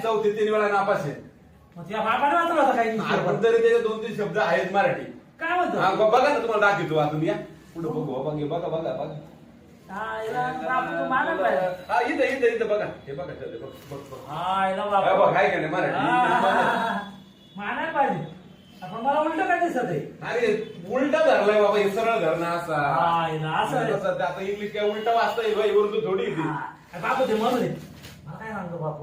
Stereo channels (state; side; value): identical; both; correlation 1.00